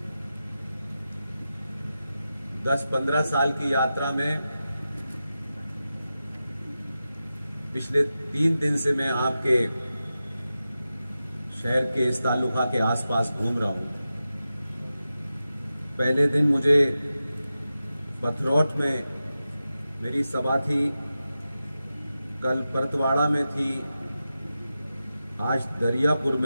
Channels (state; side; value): inverted; both; correlation -0.92